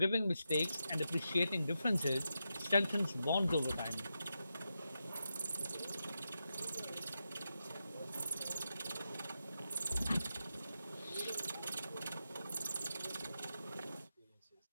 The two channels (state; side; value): inverted; both; correlation -0.87